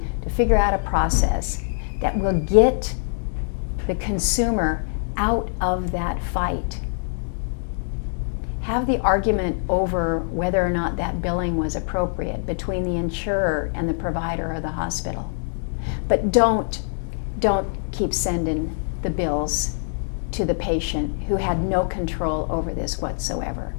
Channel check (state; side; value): silent; right; digital silence